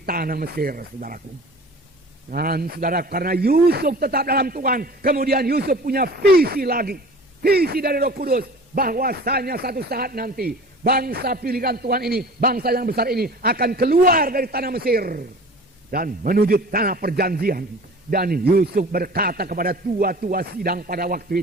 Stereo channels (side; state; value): both; normal; correlation 0.41